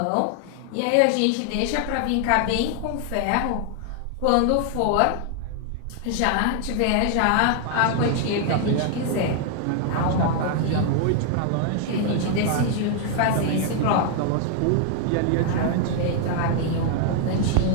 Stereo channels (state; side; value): different; both; correlation 0.00